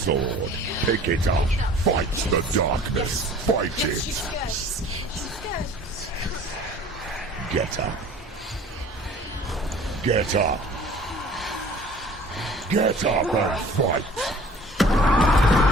Pick it up. Fight the darkness. Fight it. Get up. Get up. Get up and fight.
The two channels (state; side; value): normal; both; correlation 0.48